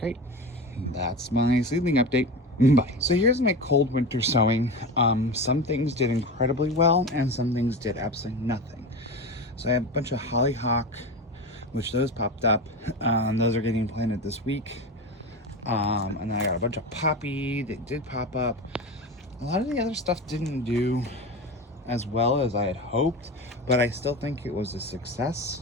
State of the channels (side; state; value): both; normal; correlation 0.25